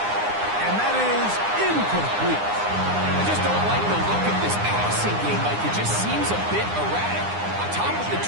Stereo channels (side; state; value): left; late; 9.8 ms